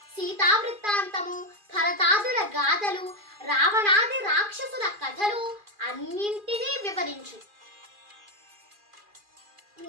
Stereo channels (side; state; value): left; late; 2.4 ms